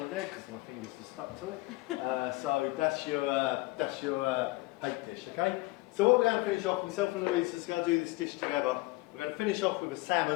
there because my fingers are stuck to it. So that's your hake dish, okay? So what we're going to finish off, myself and Louise is going to do this dish together. We're going to finish off with a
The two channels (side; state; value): right; quieter; 21.8 dB